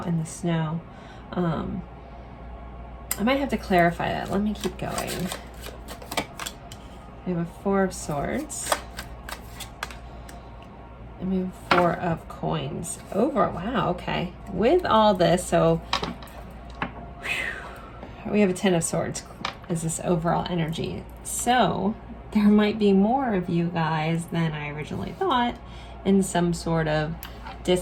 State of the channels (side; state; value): both; identical; correlation 1.00